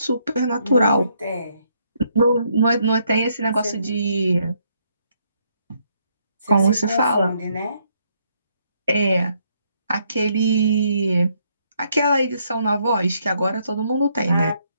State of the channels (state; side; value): inverted; both; correlation -0.72